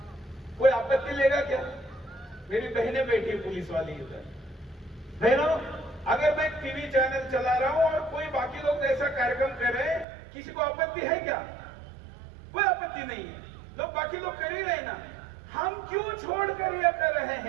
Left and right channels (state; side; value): drops out; left; at 10.1 s